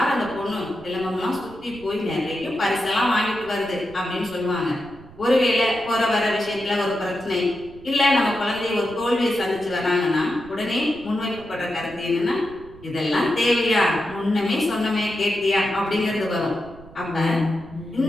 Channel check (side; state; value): right; noise; rumble, 20 dB below the sound